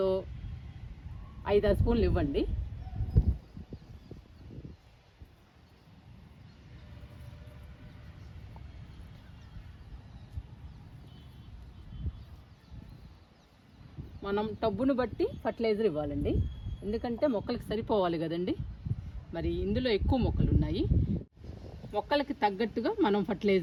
5-6 స్పూన్లు ఇవ్వండి. మనం టబ్బును బట్టి ఫర్టిలైజర్ ఇవ్వాలండి, ఎందుకంటే మొక్కలకి సరిపోవాలి కదండి. మరి ఇందులో ఎక్కువ మొక్కలు ఉన్నాయి, మొక్కలకి తగ్గట్టుగా మనం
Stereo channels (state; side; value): identical; both; correlation 1.00